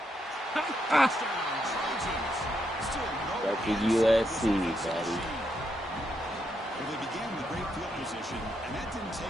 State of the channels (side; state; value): both; normal; correlation 0.79